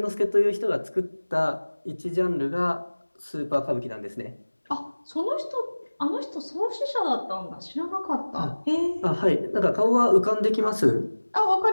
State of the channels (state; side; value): inverted; both; correlation -1.00